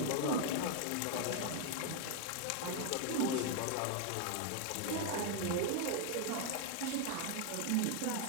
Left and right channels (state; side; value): different; both; correlation 0.01